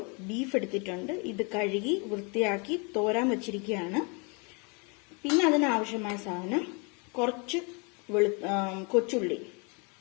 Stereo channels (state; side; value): quieter; right; 32.8 dB